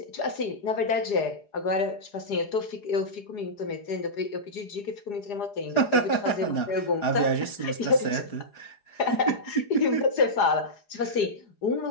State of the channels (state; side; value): late; right; 4.9 ms